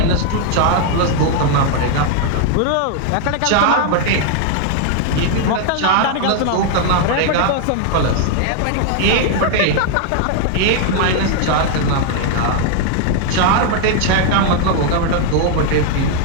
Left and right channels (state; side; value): different; both; correlation 0.00